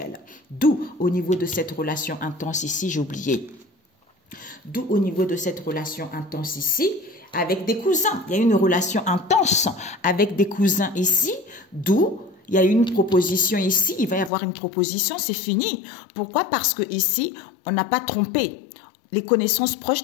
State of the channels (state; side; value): drops out; right; at 14.3 s